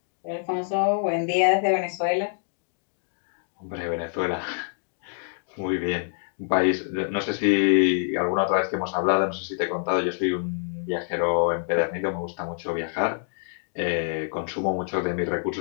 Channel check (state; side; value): silent; right; digital silence